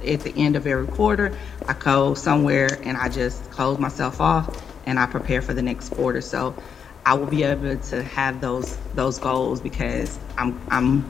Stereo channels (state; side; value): quieter; right; 7.1 dB